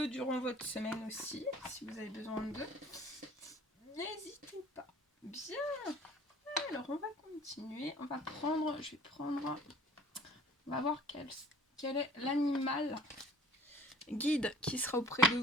durant votre semaine aussi, si vous avez besoin d'eux. N'hésitez pas. Bien. Alors, on va continuer. On va voir quel est l'animal guide qui sera auprès de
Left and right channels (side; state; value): both; normal; correlation 0.48